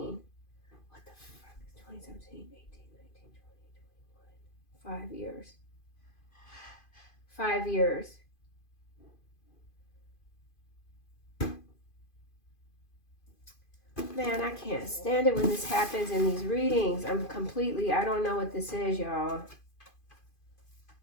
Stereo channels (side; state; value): right; late; 2.5 ms